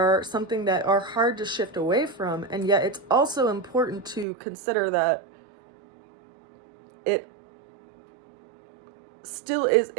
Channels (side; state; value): left; drops out; at 4.2 s